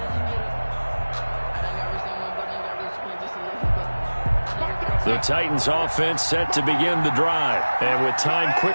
The Titans offense set to begin the drive. And with time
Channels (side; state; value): both; inverted; correlation -1.00